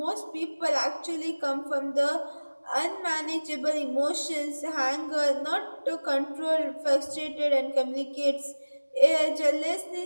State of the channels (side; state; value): both; inverted; correlation -1.00